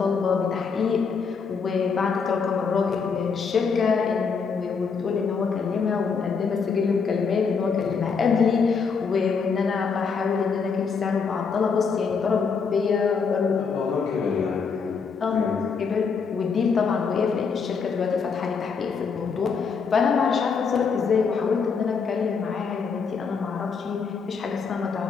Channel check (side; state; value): right; quieter; 5.5 dB